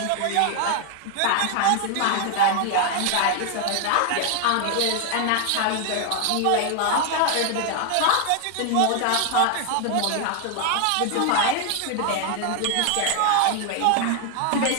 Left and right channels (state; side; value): different; both; correlation 0.00